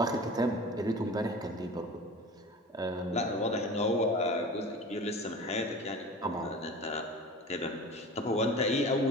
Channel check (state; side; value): normal; both; correlation 0.37